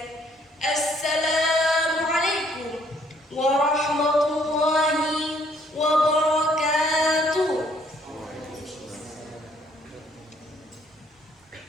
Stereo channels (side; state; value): both; normal; correlation 0.64